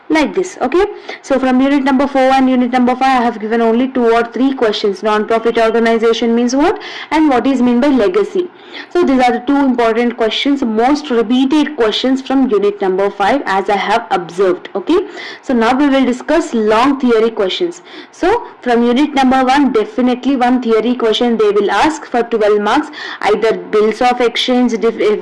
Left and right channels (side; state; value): both; identical; correlation 1.00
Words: Like this. Okay, so from unit number 4 and unit number 5 I have given only 2 or 3 questions. Non-profit organization means what, and what is mean by legacy? So these are the 2 important questions, most repeated questions from unit number 5 as I have observed. Okay, so now we will discuss long theory questions. So from unit number 1, definitely one theory question they will ask for 12 marks, either bills of exchange